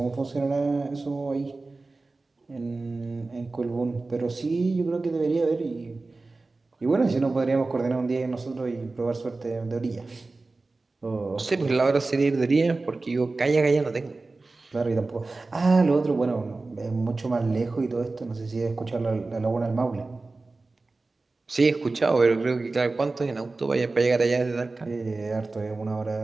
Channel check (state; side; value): quieter; left; 3.5 dB